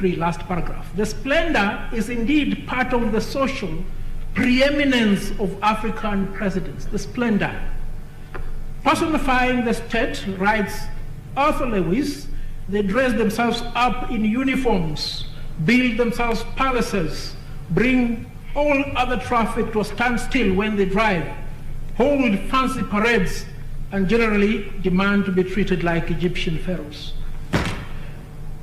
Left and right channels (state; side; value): identical; both; correlation 1.00